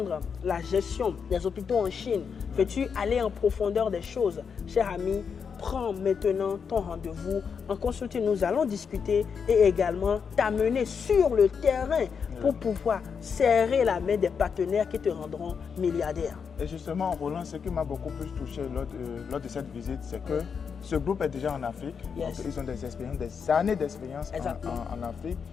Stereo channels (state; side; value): quieter; right; 6.3 dB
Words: la gestion des hôpitaux en Chine? Veux-tu aller en profondeur des choses? Cher ami, prends maintenant ton rendez-vous en consulting. Nous allons discuter et également t'amener sur le terrain pour pouvoir serrer la main des partenaires qui te rendront milliardaire. Et justement, Roland, ce qui m'a beaucoup plus touché lors de cette visite, c'est que ce groupe est déjà en Afrique. Donc ils ont des expériences, des années d'expérience en Afrique.